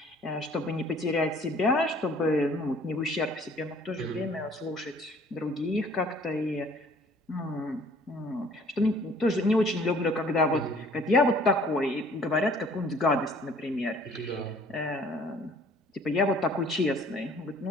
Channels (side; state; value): both; normal; correlation 0.55